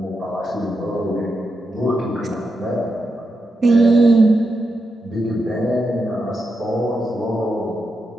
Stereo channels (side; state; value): both; normal; correlation 0.86